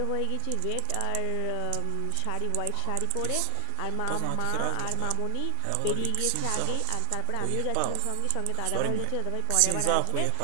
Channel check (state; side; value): different; both; correlation 0.00